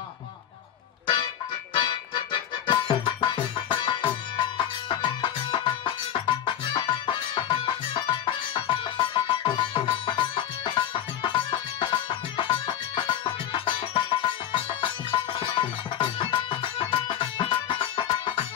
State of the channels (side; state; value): right; quieter; 10.5 dB